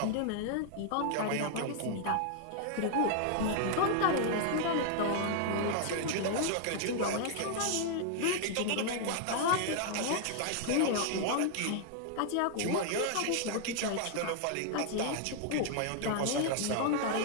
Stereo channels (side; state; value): both; different; correlation 0.00